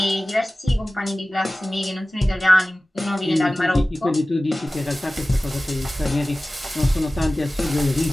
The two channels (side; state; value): both; normal; correlation 0.97